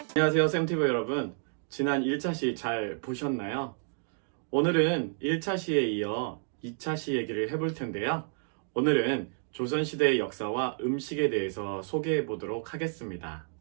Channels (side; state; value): left; silent; digital silence